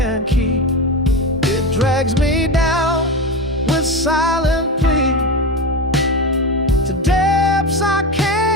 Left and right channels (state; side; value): normal; both; correlation 0.21